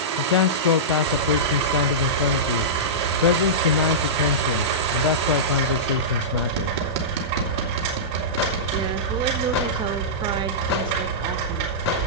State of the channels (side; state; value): both; normal; correlation -0.16